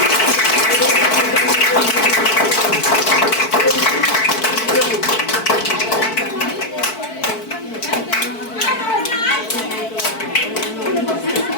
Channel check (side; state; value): right; late; 4.5 ms